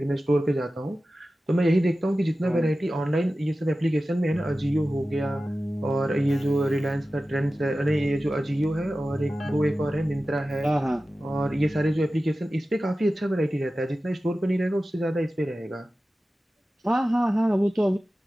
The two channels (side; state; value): both; normal; correlation 0.95